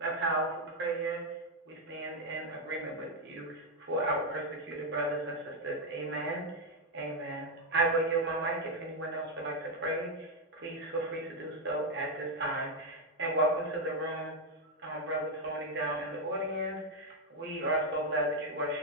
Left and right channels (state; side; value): normal; both; correlation 0.02